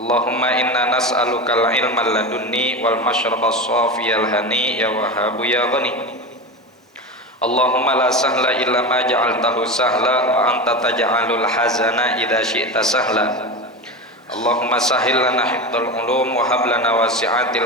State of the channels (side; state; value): both; normal; correlation 0.23